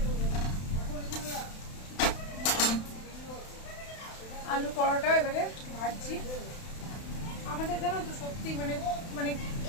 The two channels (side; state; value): right; late; 31 ms